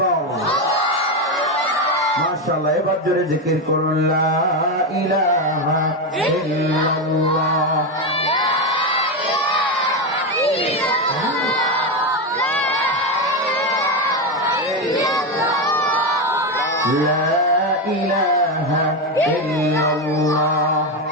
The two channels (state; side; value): normal; both; correlation 0.11